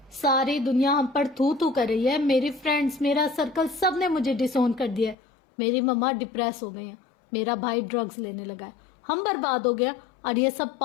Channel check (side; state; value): right; drops out; at 5.2 s